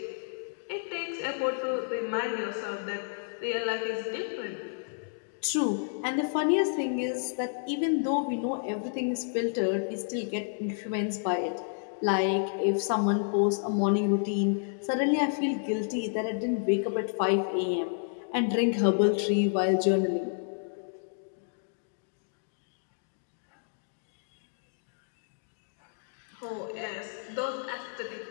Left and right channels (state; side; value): silent; right; digital silence